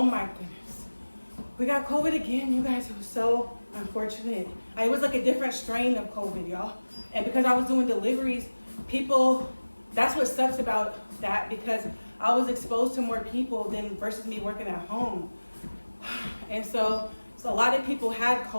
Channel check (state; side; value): inverted; both; correlation -1.00